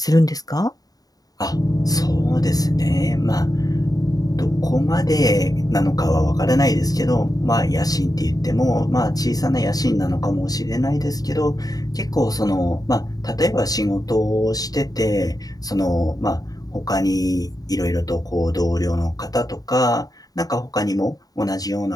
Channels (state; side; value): late; right; 0.18 ms